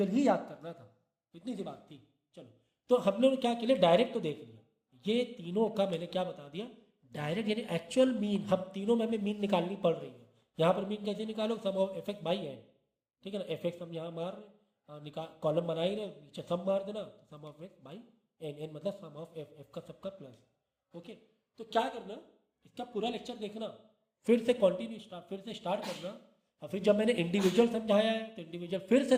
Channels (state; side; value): identical; both; correlation 1.00